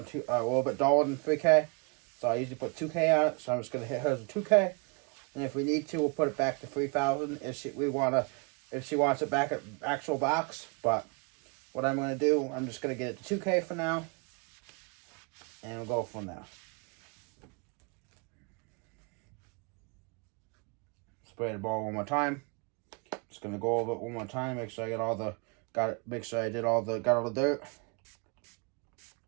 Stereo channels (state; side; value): quieter; left; 33.2 dB